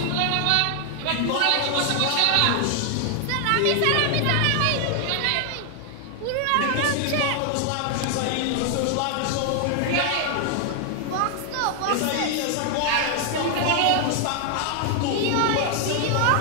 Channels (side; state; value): both; different; correlation 0.00